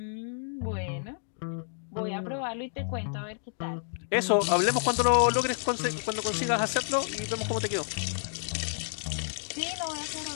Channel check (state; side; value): silent; right; digital silence